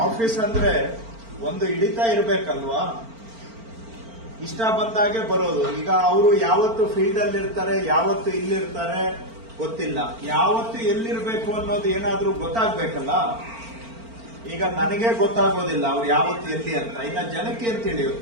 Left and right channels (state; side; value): late; left; 4.4 ms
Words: ಆಫೀಸ್ ಅಂದ್ರೆ ಒಂದು ಹಿಡಿತಾ ಇರ್ಬೇಕಲ್ವಾ? ಇಷ್ಟ ಬಂದಾಗೆ ಬರೋದು. ಈಗ ಅವರು ಯಾವತ್ತು ಫೀಲ್ಡ್ ಅಲ್ಲಿ ಇರ್ತಾರೆ, ಯಾವತ್ತು ಇಲ್ಲಿರ್ತಾರೆ ಗೊತ್ತಿಲ್ಲ. ಯಾವತ್ತು ಎಲ್ಲಿರ್ಬೇಕು ಅನ್ನೋದು ಏನಾದ್ರೂ ಗೊತ್ತಾಗ್ಬೇಕಲ್ಲ. ಈಗ ನನಗೆ ಗೊತ್ತಾಗೋದಿಲ್ಲ ಅವ್ರು ಯಾವತ್ತು ಎಲ್ಲಿ ಅಂತ. ಇನ್ನ ಜನಕ್ಕೆ ಏನ್